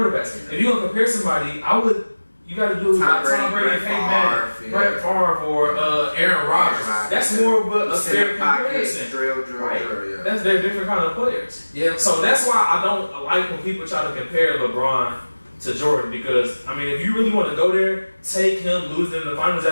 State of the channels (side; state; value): both; inverted; correlation -1.00